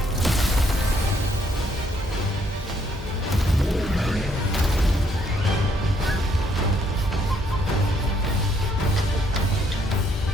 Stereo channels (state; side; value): normal; both; correlation 0.70